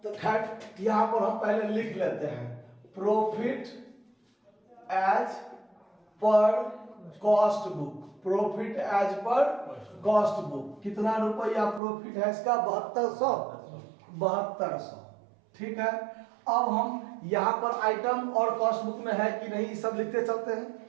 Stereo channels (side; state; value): left; drops out; at 11.8 s